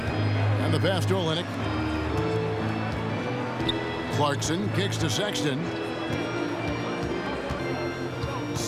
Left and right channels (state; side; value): identical; both; correlation 1.00